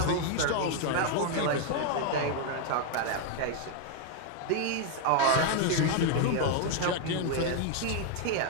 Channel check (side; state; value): both; different; correlation 0.00